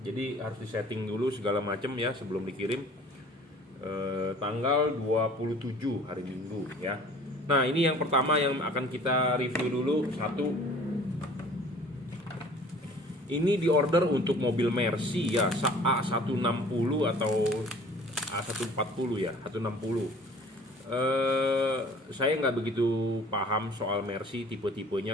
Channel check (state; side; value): normal; both; correlation 0.49